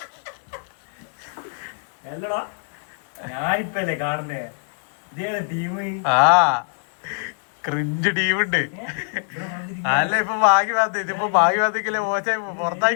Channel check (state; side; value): silent; right; digital silence